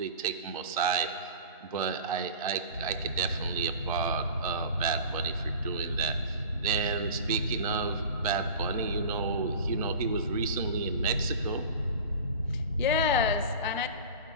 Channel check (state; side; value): inverted; both; correlation -0.38